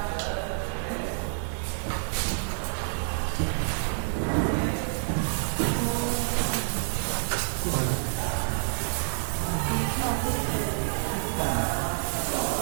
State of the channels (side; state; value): left; silent; 59 dB below the other